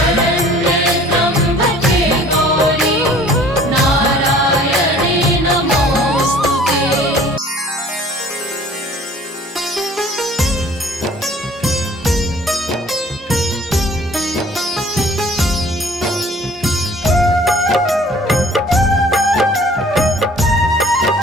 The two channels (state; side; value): normal; both; correlation 0.51